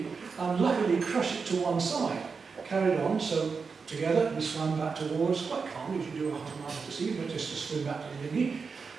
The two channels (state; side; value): quieter; left; 5.2 dB